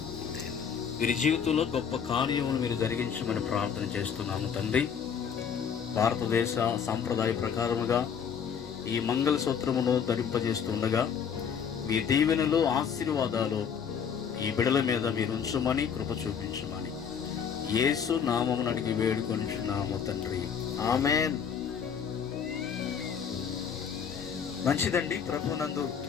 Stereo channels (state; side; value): quieter; right; 7.3 dB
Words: వీరి జీవితంలో గొప్ప కార్యమును మీరు జరిగించమని ప్రార్థన చేస్తున్నాము తండ్రి. భారతదేశ సాంప్రదాయ ప్రకారముగా ఈ మంగళసూత్రమును ధరింపజేస్తుండగా మీ దీవెనలు, ఆశీర్వాదాలు ఈ బిడల మీద మీరు ఉంచమని కృప చూపించమని యేసు నామమును అడిగి వేడుకొనిచున్నాము తండ్రి. ఆమేన్. మంచిదండి. ప్రభునందు